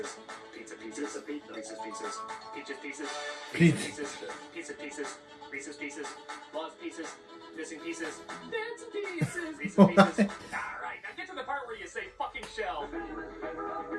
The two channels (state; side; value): identical; both; correlation 1.00